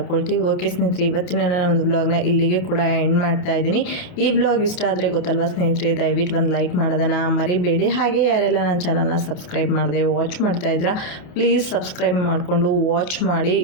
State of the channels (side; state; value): right; late; 28 ms